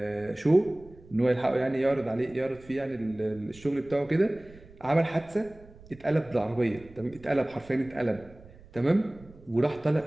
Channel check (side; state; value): right; noise; rumble, 22 dB below the sound